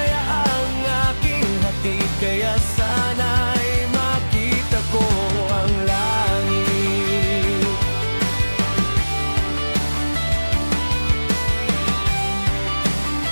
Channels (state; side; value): inverted; both; correlation -1.00